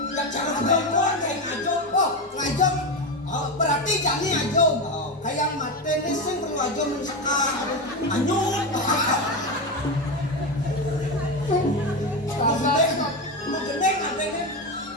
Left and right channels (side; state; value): both; normal; correlation 0.15